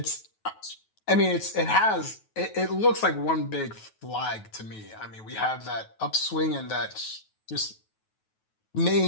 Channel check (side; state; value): right; late; 9.3 ms